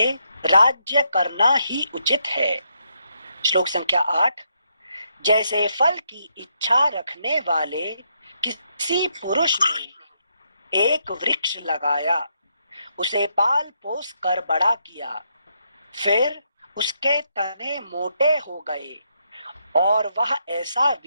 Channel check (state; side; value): inverted; both; correlation -0.77